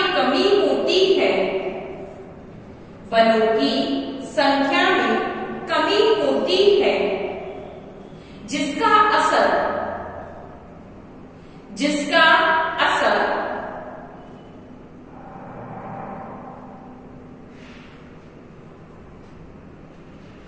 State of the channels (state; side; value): identical; both; correlation 1.00